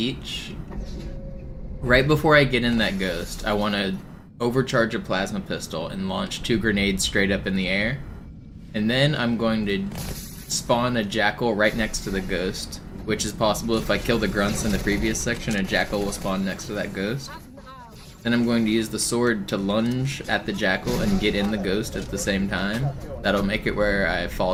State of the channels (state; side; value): identical; both; correlation 1.00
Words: Right before I get in that ghost, I want to overcharge a plasma pistol and launch 2 grenades straight up in the air. And then I'm going to spawn a jackal right next to the ghost, which is possible if I kill the grunts in the previous section, a jackal will spawn next to that ghost. Then I'm going to use the sword to lunge at the jackal and get in the ghost at the same time. That'll make it where I